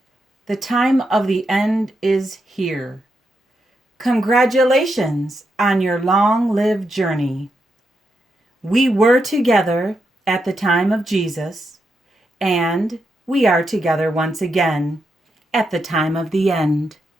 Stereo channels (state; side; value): normal; both; correlation 0.83